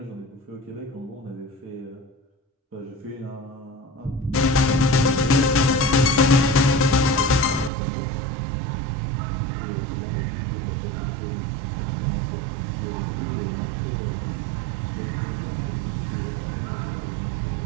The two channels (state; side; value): drops out; left; at 7.7 s